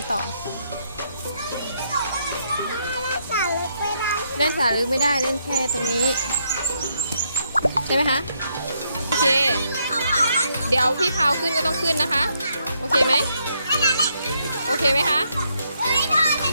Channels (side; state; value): both; inverted; correlation -0.75